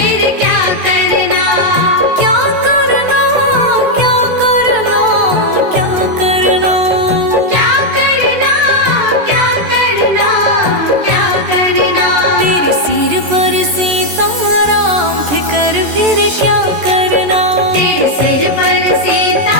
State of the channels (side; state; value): left; late; 14 ms